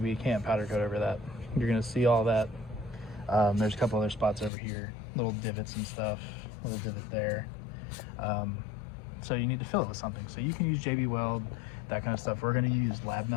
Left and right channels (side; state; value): right; drops out; at 4.5 s